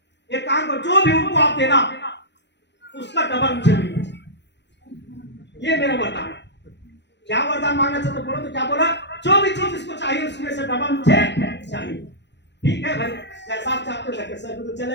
एक काम करो, जो भी उनको आप देना उसका डबल मुझे मिलना चाहिए, ये मेरा वरदान है। क्या वरदान मांगना चाहते बोलो, तो क्या बोला, जो भी चीज इसको चाहिए उसमें से डबल मुझे चाहिए। ठीक है भाई, जैसा आप चाहते हो सर तो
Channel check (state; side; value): late; right; 0.51 ms